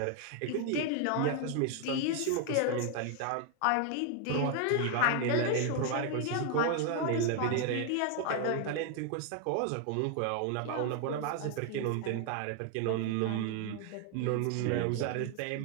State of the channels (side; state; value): both; different; correlation 0.00